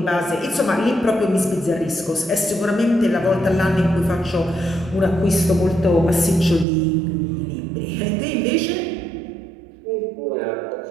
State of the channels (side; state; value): left; drops out; at 6.7 s